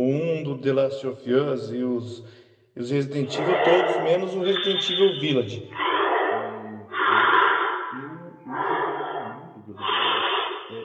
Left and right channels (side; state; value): both; identical; correlation 1.00